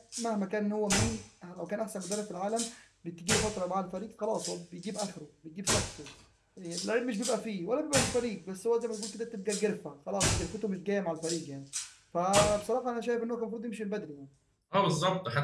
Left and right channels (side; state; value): both; identical; correlation 1.00